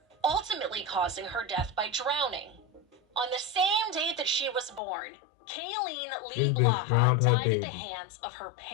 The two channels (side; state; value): right; drops out; at 4.8 s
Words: ultimately causing her death by drowning. On the same day that she was born, Kayleen Lee Blaha died at the hands of her